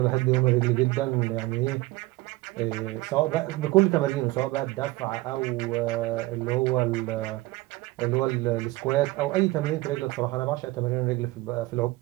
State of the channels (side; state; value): left; quieter; 20.0 dB